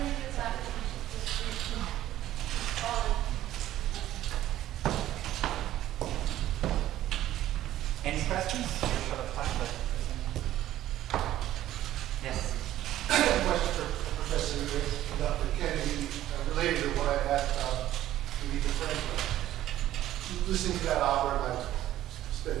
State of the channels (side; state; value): left; quieter; 13.4 dB